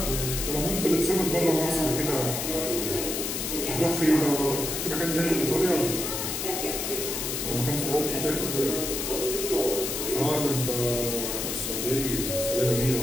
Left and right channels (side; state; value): left; noise; hiss, 3 dB below the sound